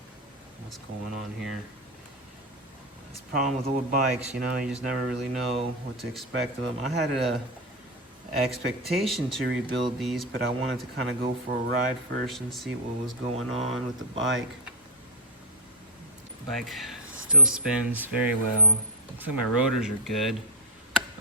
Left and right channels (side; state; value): both; normal; correlation 0.04